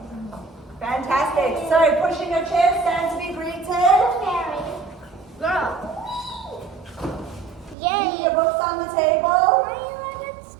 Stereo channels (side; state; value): left; drops out; at 7.8 s